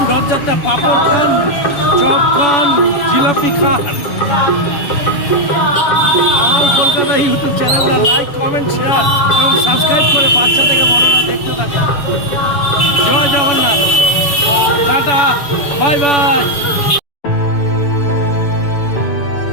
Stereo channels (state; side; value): late; right; 7.0 ms